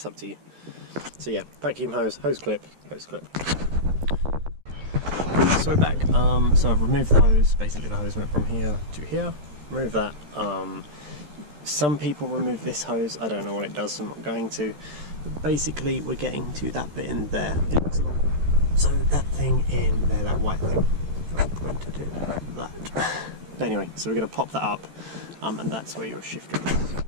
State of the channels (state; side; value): late; left; 13 ms